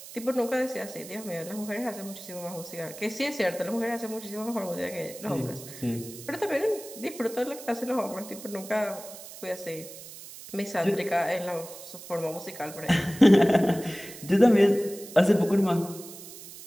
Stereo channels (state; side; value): noise; right; hiss, 15 dB below the sound